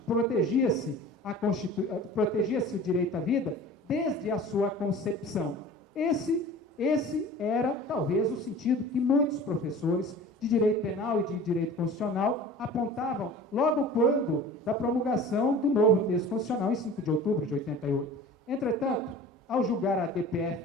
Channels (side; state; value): both; normal; correlation 0.40